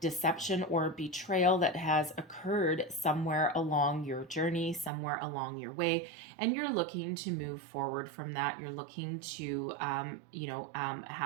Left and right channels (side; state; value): left; drops out; at 4.9 s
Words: or betrayal that has occurred somewhere along your journey, somewhere along your way, and you're looking to move forward from that. You're looking to,